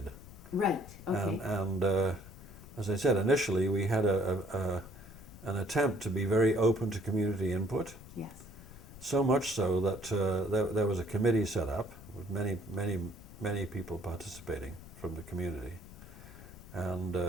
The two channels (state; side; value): noise; left; rumble, 17 dB below the sound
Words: Right. Okay. And as I said, initially we had an attempt to be very open to community input. Yes. So much so that there was a committee set up with many people participating from the community, and